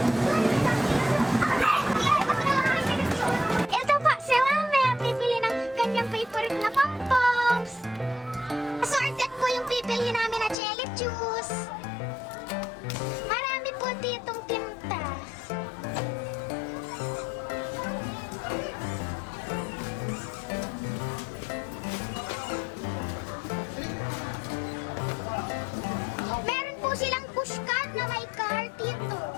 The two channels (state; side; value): drops out; right; at 10.6 s